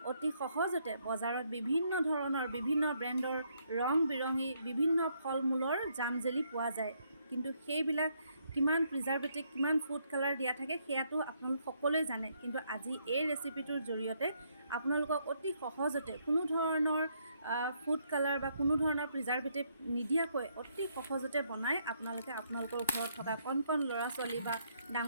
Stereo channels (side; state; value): both; inverted; correlation -0.73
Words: অতি সহজতে বজাৰত বিভিন্ন ধৰণৰ বিভিন্ন ব্ৰেণ্ডৰ ৰং বিৰঙী বিভিন্ন ফল মূলৰ জাম জেলি পোৱা যায়, কিন্তু সেইবিলাক কিমান প্ৰিজাৰ্ভেটিভ কিমান ফুড কালাৰ দিয়া থাকে সেয়াটো আপোনালোক সকলোৱে জানে। কিন্তু আজি এই ৰেচিপিটোৰ জৰিয়তে আপোনালোকক অতি সহজতে কোনো ধৰণৰ ফুড কালাৰ বা কোনো ধৰণৰ প্ৰিজাৰ্ভেটিভ নিদিয়াকৈ অতি সহজতে বনাই আপোনালোকে আপোনালোকৰ ঘৰত থকা কণ কণ ল'ৰা ছোৱালী বা